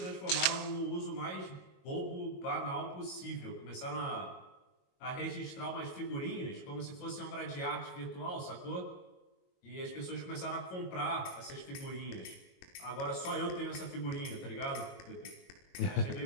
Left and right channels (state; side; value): late; right; 22 ms